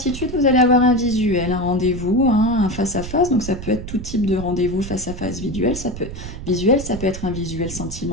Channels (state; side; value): noise; right; rumble, 10 dB below the sound